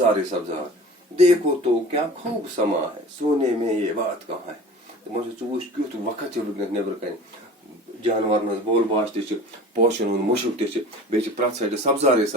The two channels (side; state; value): both; normal; correlation 0.41